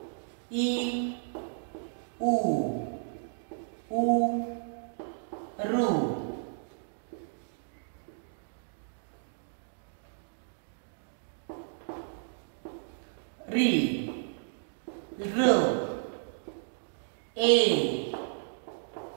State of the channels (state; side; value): silent; left; digital silence